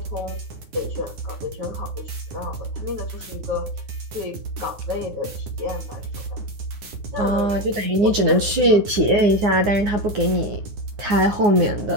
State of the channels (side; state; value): left; late; 9.7 ms